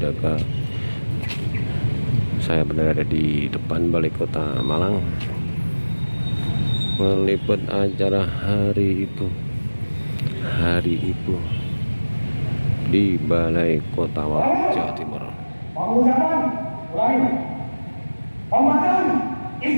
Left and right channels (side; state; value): both; inverted; correlation -1.00